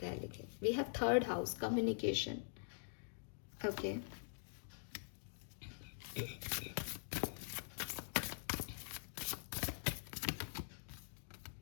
है। लेकिन we have third house, communication, okay.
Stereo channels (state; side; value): silent; right; digital silence